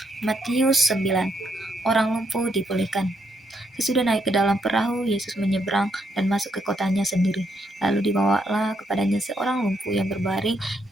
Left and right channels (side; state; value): both; normal; correlation 0.77